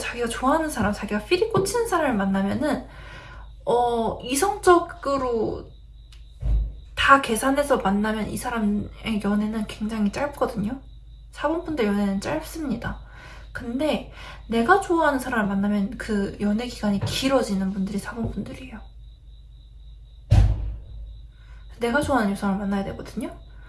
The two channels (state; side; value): identical; both; correlation 1.00